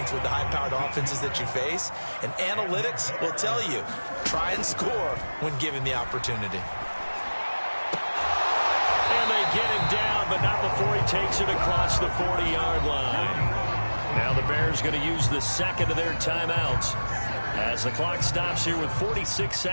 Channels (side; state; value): both; inverted; correlation -1.00